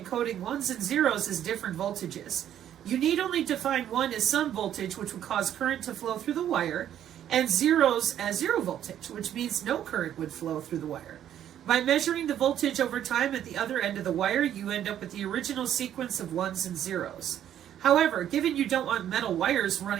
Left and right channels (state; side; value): quieter; left; 10.7 dB